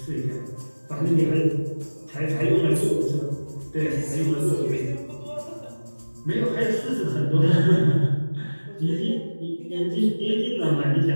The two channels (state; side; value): inverted; both; correlation -1.00